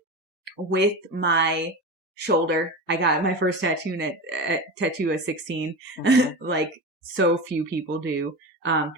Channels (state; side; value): normal; both; correlation 0.25